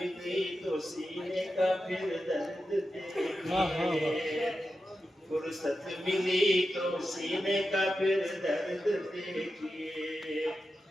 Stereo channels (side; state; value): both; normal; correlation 0.90